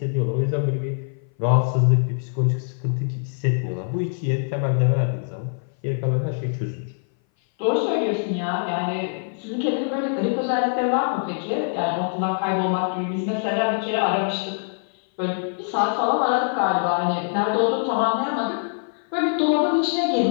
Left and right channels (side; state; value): right; silent; 58 dB below the other